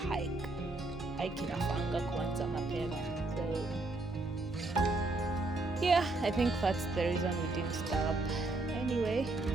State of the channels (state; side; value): quieter; left; 3.1 dB